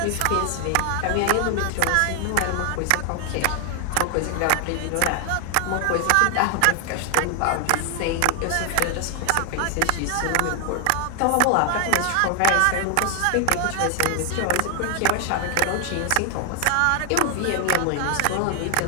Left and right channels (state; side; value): different; both; correlation 0.00